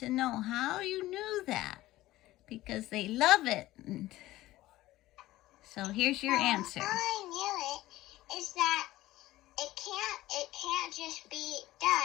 know how you knew that. Because they love it. So here's your answer. How I knew it is that it can't just be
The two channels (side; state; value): right; quieter; 16.5 dB